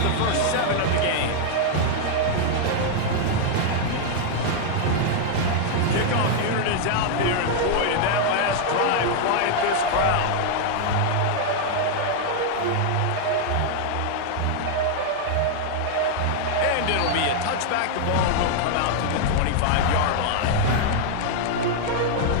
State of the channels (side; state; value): both; different; correlation 0.00